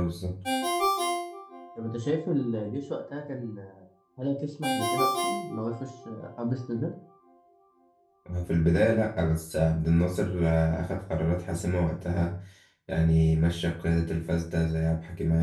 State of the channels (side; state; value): both; identical; correlation 1.00